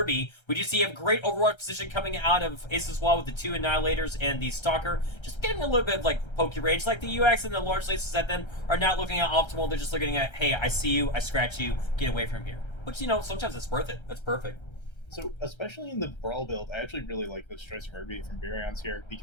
We do see a great Overwatch position coming out of Ace's Wall with the 2 Annihilators and the Stalker. Just getting a little bit of, like, pokey range. Like, the UX and the large lasers at them are not looking at optimal. They're just looking at, hey, I see you, I scratch you, get away from here. Which, you know, sometimes it's worth it. That's perfect. So, especially in the Brawl build, I actually really like this choice of Irby from Baryons here,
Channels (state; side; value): late; right; 1.3 ms